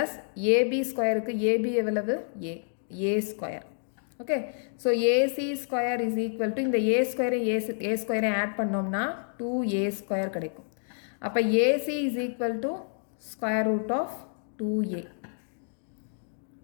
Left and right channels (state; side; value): silent; right; digital silence